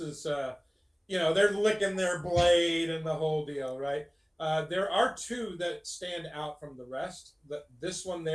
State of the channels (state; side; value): identical; both; correlation 1.00